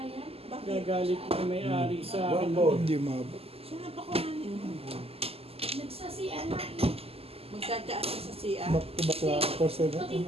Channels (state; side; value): late; left; 0.29 ms